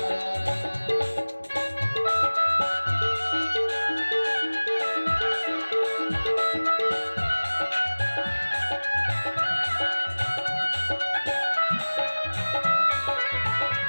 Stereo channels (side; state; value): both; inverted; correlation -1.00